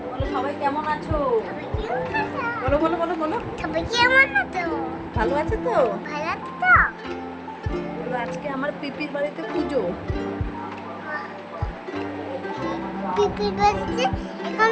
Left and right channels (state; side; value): identical; both; correlation 1.00